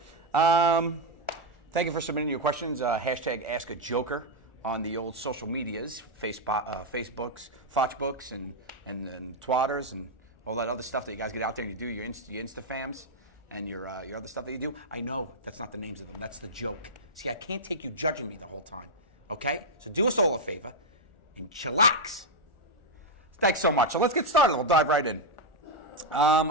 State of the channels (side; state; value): right; late; 1.4 ms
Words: Thank you for submitting your questions. Hashtag Ask a Joker on the old social medias, Facebooks, Foxbooks, and Twatters, and all that other stuff that you guys get out there and you do, your Instafams and your other stuff that you do. I know that's not the names of them. That's the joke. See, I can't take you judging me the whole time, okay? So do us all a favor and chillax. Thanks so much. So let's get started. We'll dive right in.